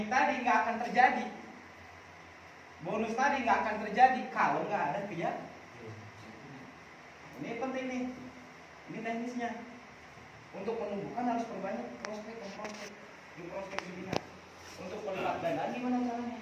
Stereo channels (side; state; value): both; identical; correlation 1.00